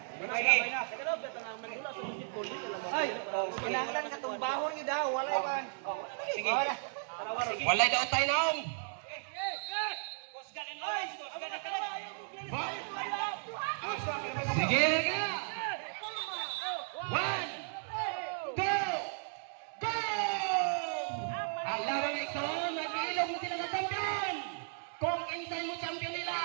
Sige. Ay, kinahanglan ka itong bahon niyo daw. Walay ba? Sige. Walay daw tayo naong. Sige na. 1, 2, go! Alam mo ito, nag-iilog mo sila ng champion. Kung insay mo champion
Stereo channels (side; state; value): left; silent; digital silence